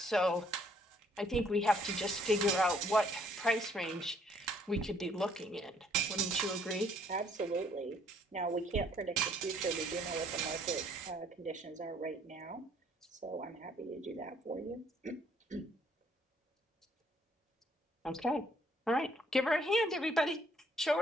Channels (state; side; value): normal; both; correlation 0.64